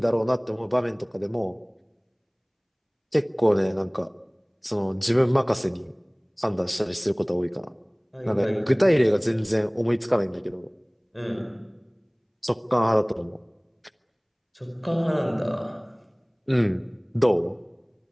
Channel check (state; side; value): identical; both; correlation 1.00